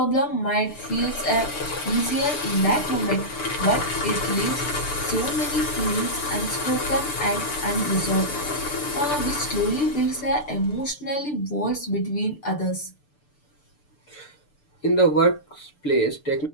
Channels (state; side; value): late; right; 6.8 ms